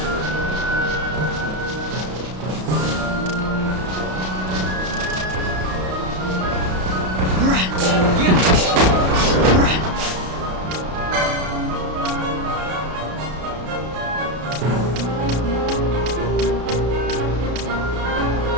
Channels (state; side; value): late; left; 33 ms